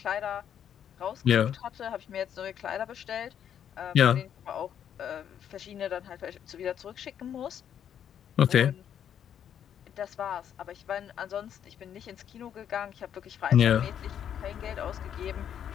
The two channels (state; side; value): quieter; right; 9.2 dB